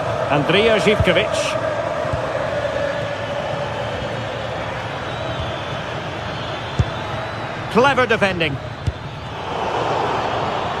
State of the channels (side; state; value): both; identical; correlation 1.00